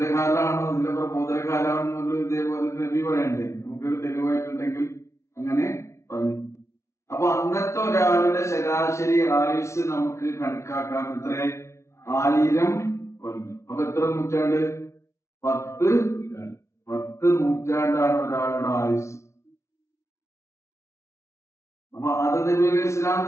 അതിന്റെ പ്രബോധനകാലമാണെന്നുള്ള ഇതേപോലെ നബി പറയണ്ടേ? നമുക്കൊരു തെളിവായിട്ടുണ്ടെങ്കിൽ അങ്ങനെ പറഞ്ഞു. അപ്പൊ അന്നത്തെ ഒരാളുടെ ശരാശരി ആയുസ് നമുക്ക് കണക്കാക്കാം. എത്ര? 1000 കൊല്ലം. അപ്പൊ എത്ര നൂറ്റാണ്ട്? 10 നൂറ്റാണ്ടാണ് ഒരാളുടെ ആയുസ്. അപ്പൊ ആദം നബി അലൈഹി സ്വലാം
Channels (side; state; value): right; late; 0.13 ms